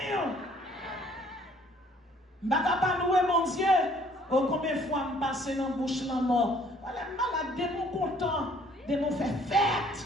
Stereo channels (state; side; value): normal; both; correlation 0.60